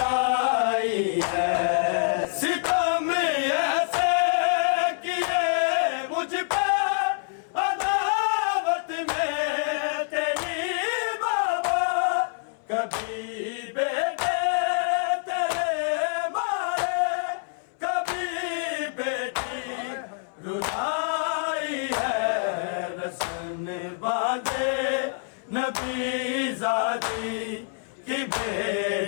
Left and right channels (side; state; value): right; silent; 61 dB below the other